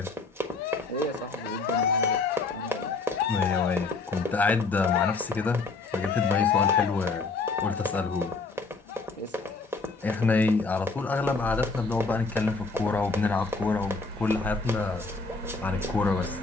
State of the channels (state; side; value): quieter; right; 4.1 dB